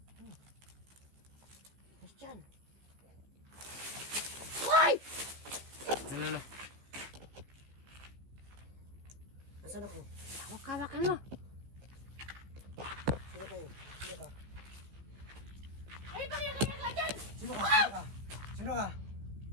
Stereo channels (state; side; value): late; left; 15 ms